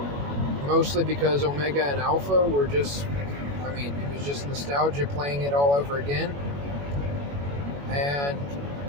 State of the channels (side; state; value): left; late; 21 ms